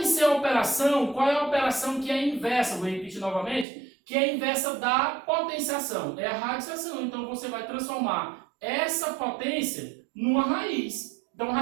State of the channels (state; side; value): drops out; left; at 3.7 s